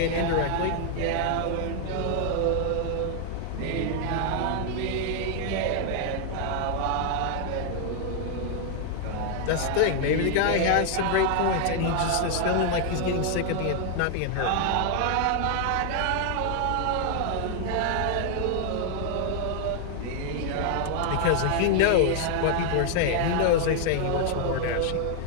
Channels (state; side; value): different; both; correlation 0.00